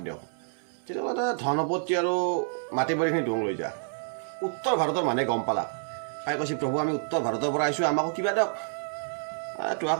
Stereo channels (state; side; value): silent; left; 59 dB below the other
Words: দিয়ক তেতিয়াহ'লে ধন সম্পত্তি আৰু মাটি বাৰীখিনি দোং লৈ যা উত্তৰ ভাৰতৰ মানুহে গম পালাক পাই কৈছে প্ৰভু আমি উত্তৰ ভাৰতৰ পৰা আহিছোঁ আমাকো কিবা দিয়ক